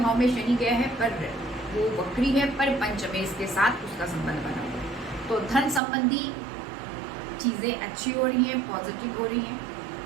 में शनि गया है, पर वो वक्री है, पर पंचमेश के साथ उसका संबंध बना हुआ है, तो धन संबंधी चीज़ें अच्छी हो रही हैं, पॉजिटिव हो रही हैं,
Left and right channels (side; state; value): left; drops out; at 5.8 s